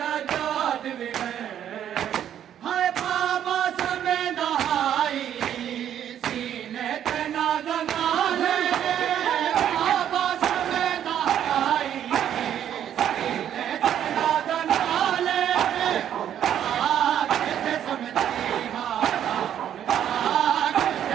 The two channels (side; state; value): left; quieter; 10.1 dB